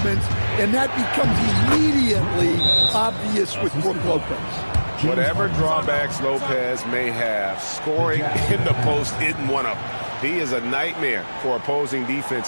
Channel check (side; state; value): both; inverted; correlation -1.00